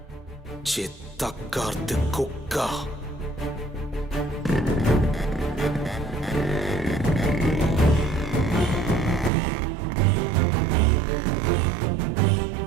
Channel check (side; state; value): left; drops out; at 9.3 s